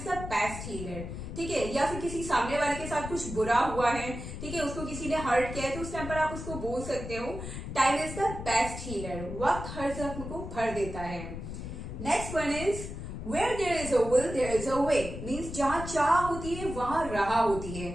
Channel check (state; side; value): noise; left; rumble, 8 dB below the sound